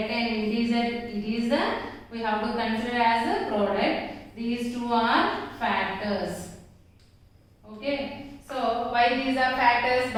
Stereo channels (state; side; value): identical; both; correlation 1.00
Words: an integer. It is we have to consider as a product. These two are factors. Okay. So why these are factors?